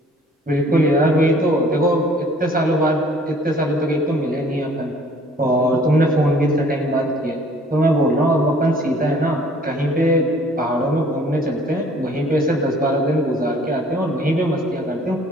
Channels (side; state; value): both; normal; correlation 0.55